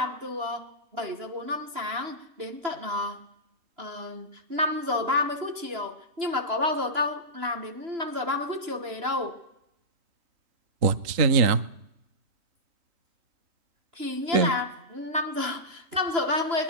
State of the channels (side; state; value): left; late; 2.9 ms